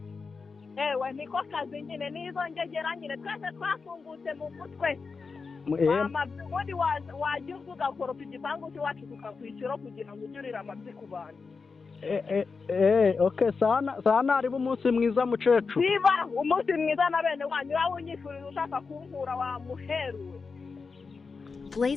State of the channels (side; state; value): right; quieter; 4.8 dB